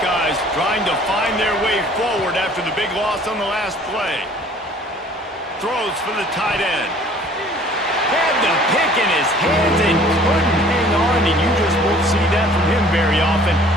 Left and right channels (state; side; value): normal; both; correlation 0.53